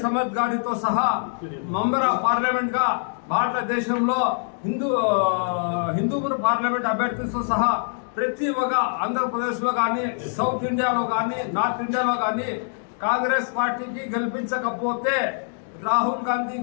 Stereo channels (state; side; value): silent; right; digital silence